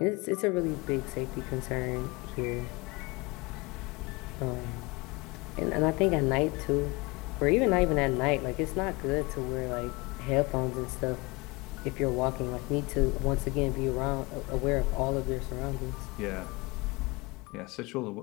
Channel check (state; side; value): quieter; right; 25.4 dB